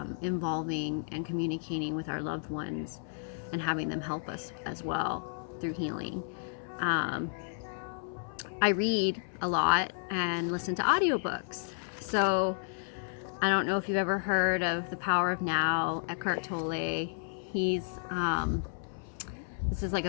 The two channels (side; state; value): right; silent; 56 dB below the other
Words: involving and communicating with our loved ones and having them help us as well through healing. I read a lot and listen to audiobooks. So I don't know if you've ever heard of The Power of Now, Eckhart Tolle. This is like